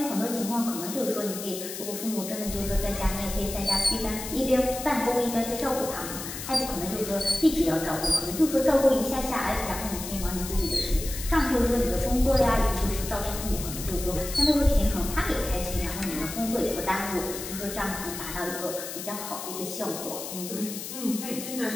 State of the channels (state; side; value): noise; left; hiss, 8 dB below the sound